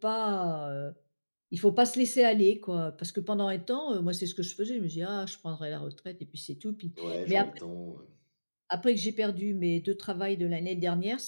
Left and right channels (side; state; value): both; inverted; correlation -1.00